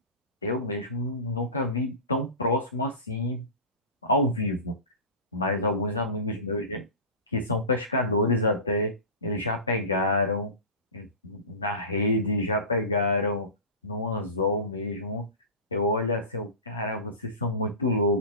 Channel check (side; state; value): both; inverted; correlation -0.34